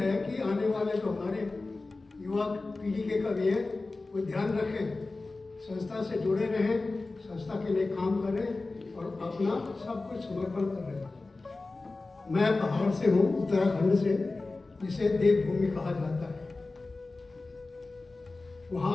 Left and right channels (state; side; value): quieter; right; 3.4 dB